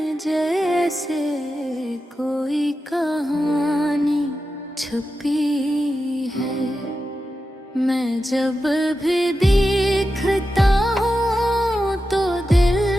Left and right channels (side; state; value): both; normal; correlation 0.91